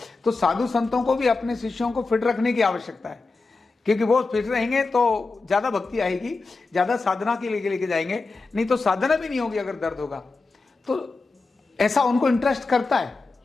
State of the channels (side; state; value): right; quieter; 3.8 dB